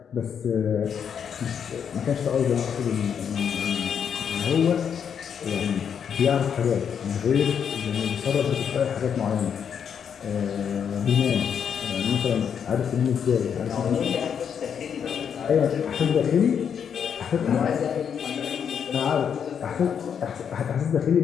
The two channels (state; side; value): quieter; right; 7.6 dB